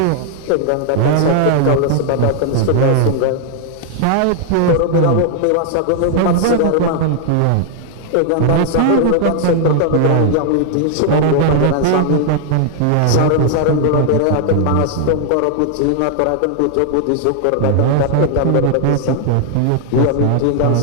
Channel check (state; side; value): different; both; correlation 0.00